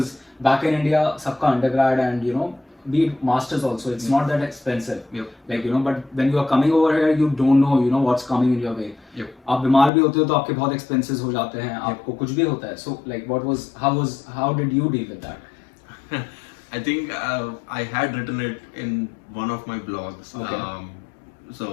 back in India सबका undergrad and, you know, be it masters also, it's not that expensive. Yep. Like, you know, but when you are coming over here, you don't know, you know, what's coming in your way. Yep. आप बीमार भी होते हो तो आपके बहुत expenses हो जाते हैं, आपको कुछ भी होता है. So like, how did you deal with that? I think I had written it in one of my blogs. Okay.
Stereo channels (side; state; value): right; drops out; at 9.9 s